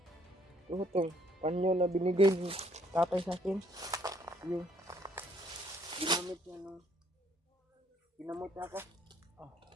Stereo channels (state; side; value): normal; both; correlation 0.65